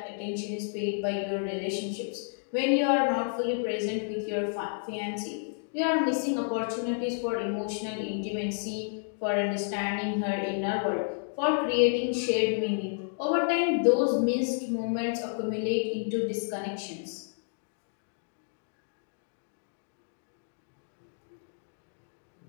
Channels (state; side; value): silent; right; digital silence